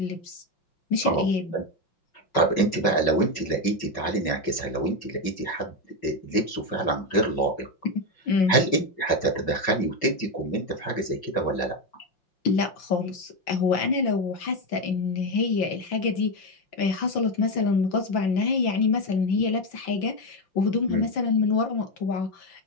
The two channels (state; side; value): late; right; 5.4 ms